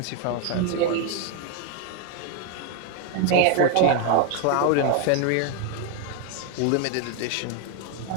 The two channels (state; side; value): different; both; correlation 0.01